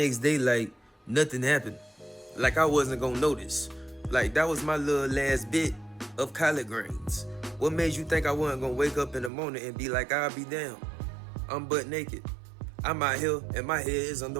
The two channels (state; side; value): drops out; left; at 9.3 s